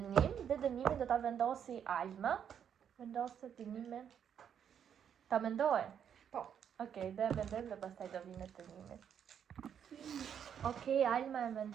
dhe dënimin do ta vendosi Alma. Vendosë dënimin. Ta mendoj? Po. Okej, dhe e mendojmë dhe pastaj do vinë dënimi. Okej, Alma e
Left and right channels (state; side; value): quieter; left; 8.4 dB